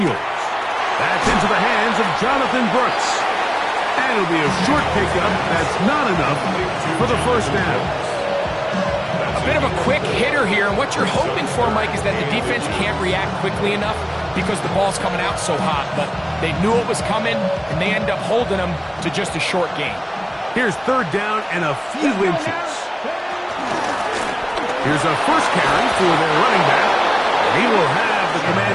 That's into the hands of Jonathan Brooks. And it'll be a short pickup. That's not enough for the first down. A bit of a quick hitter here, and what you're hoping for, Mike, is that the defense can't react quickly enough because the ball's coming out so hot. But they knew it was coming, and they end up holding them to just a short gain. Here's third down and a few inches. Here's a first carry for their running back. He will have the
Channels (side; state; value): both; identical; correlation 1.00